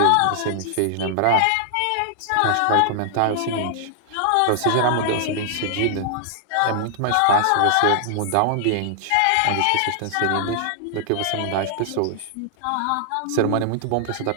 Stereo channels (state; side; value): different; both; correlation -0.01